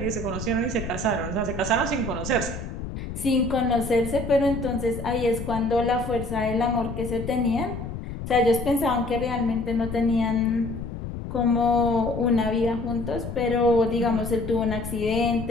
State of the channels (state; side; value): noise; left; rumble, 8 dB below the sound